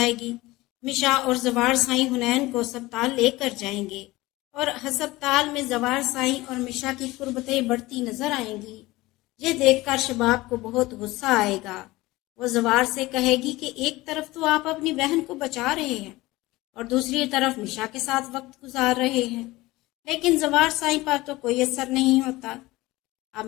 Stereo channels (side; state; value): right; quieter; 19.5 dB